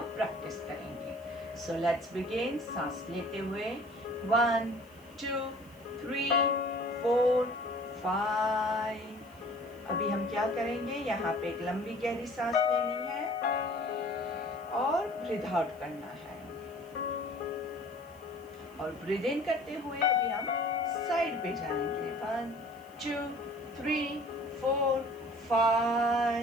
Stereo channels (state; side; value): noise; left; hiss, 28 dB below the sound